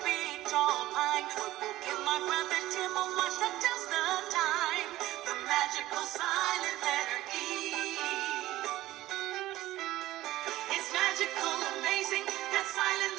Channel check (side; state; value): left; quieter; 16.0 dB